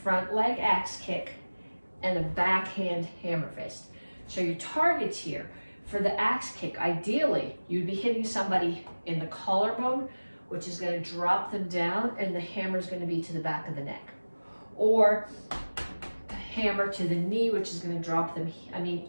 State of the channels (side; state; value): both; inverted; correlation -1.00